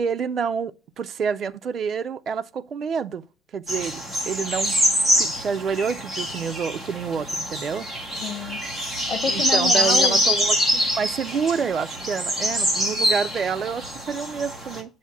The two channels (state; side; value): normal; both; correlation 0.66